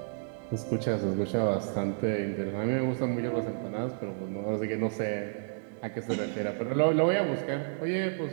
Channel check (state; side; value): silent; left; 57 dB below the other